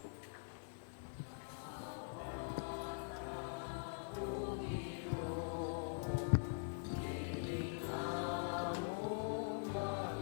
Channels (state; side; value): silent; right; digital silence